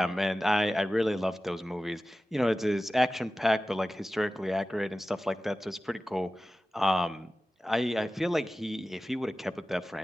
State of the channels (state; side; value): normal; both; correlation 0.95